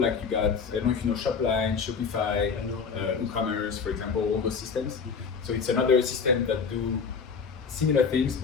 Like you got, I don't know if you know Shopline, Shopify, WooCommerce, for example, all those systems. So it's another system that do similar things,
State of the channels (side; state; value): right; quieter; 5.7 dB